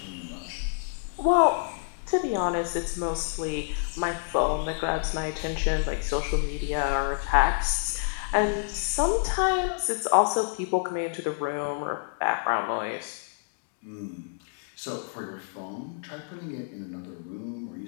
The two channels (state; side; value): silent; right; digital silence